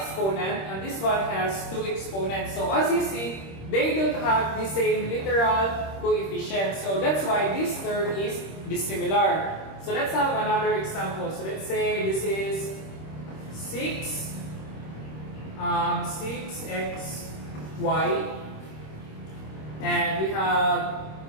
and this one has two exponents. So as you see, they don't have the same literal coefficient. So that's why this term is dissimilar. So let's have another example. So let's say this is 6xy and we have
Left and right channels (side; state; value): right; late; 26 ms